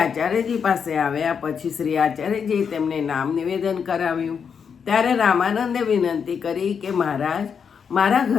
આચાર્યજી પાસે આવ્યા। પછી શ્રી આચાર્યજીએ તેમને નામ નિવેદન કરાવ્યું। ત્યારે રામાનંદે વિનંતી કરી કે મહારાજ, મારા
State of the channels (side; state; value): right; quieter; 6.7 dB